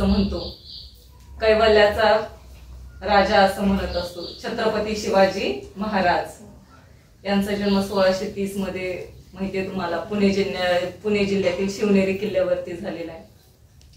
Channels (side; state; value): both; identical; correlation 1.00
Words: म्हणतो, कैवल्याचा राजा असं म्हणत असतो। छत्रपती शिवाजी महाराज यांचा जन्म 1630 मध्ये माहितीये तुम्हाला पुणे जिल्ह्यातील शिवनेरी किल्ल्यावरती झालेला आहे।